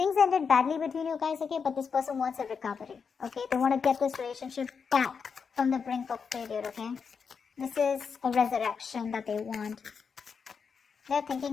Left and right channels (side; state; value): right; quieter; 5.9 dB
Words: ended badly between you guys, okay? But this person wants a recovery, okay? They want to get this relationship back from the brink of failure, okay? This is a resurrection that they want. They're